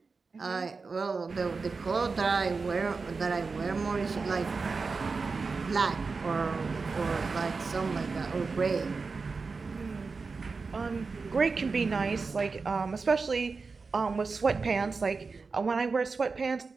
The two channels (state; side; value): quieter; left; 4.5 dB